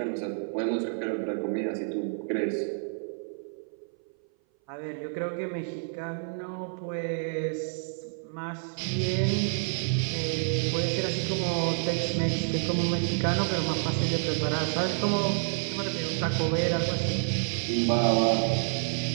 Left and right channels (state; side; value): silent; left; 57 dB below the other